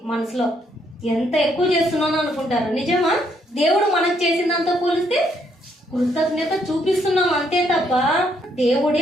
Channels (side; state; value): both; normal; correlation 0.71